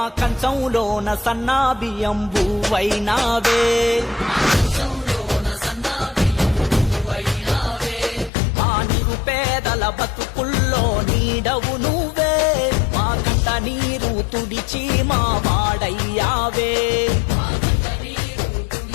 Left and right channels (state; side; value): drops out; right; at 8.3 s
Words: కంచంలోన సన్నా బియ్యం బువ్వైనావే మా నిరుపేదల బతుకుల్లో నీడవు నువ్వే మా కంట నీరు తుడిచి మా వాడయ్యావే